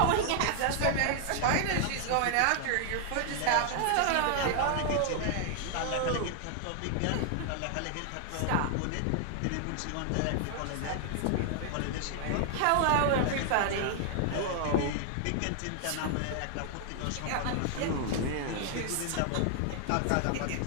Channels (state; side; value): different; both; correlation 0.00